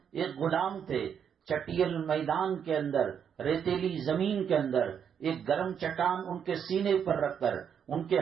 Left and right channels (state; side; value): quieter; left; 7.9 dB